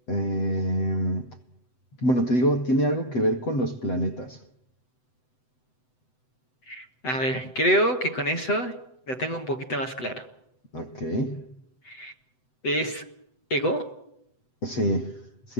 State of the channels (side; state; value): right; late; 7.9 ms